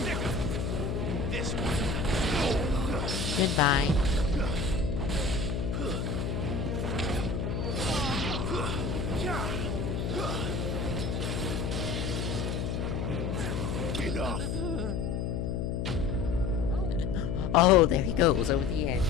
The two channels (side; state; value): left; noise; hum, 1 dB below the sound